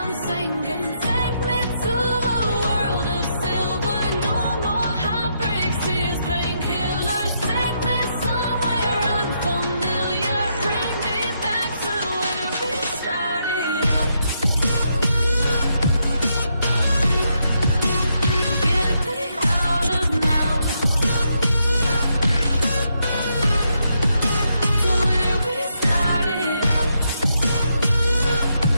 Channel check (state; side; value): inverted; both; correlation -0.79